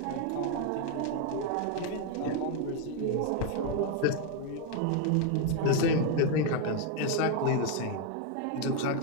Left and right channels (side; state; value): both; different; correlation 0.01